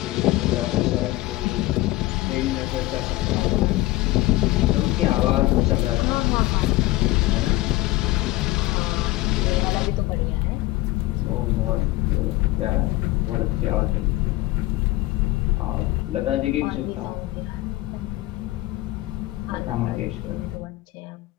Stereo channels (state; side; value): quieter; right; 18.5 dB